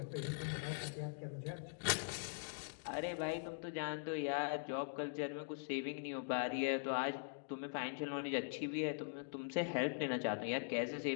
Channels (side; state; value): right; silent; digital silence